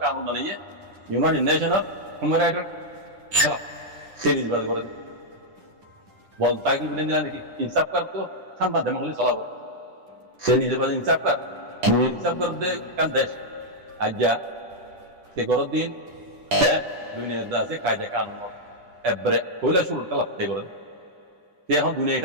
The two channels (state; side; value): late; left; 10 ms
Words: কানুন বানাইয়ে ইউনাইটেড নেশনাল হিউম্যান রাইটস খেলা সে নিজে বাদা করে বলতা কি বলেন দিলা নাকি ইনসাফ কর তো খান বাদে মহলে চালাবো সে নিজে বাদা ইনসাফ কর দে কান দেশ আজ্ঞা তে গর দিন দুনিয়ার দাসে কায়দা কানুন এবারে হইলা শুরু কালা তে করে তে এখন